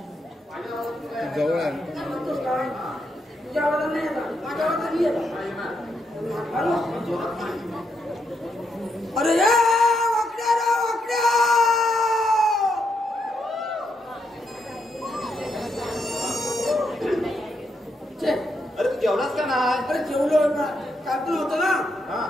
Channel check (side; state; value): both; normal; correlation 0.79